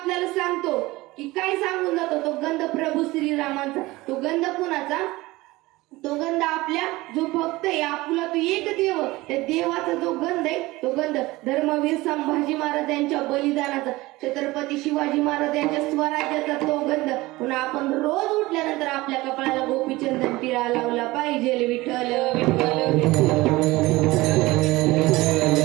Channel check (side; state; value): left; quieter; 20.1 dB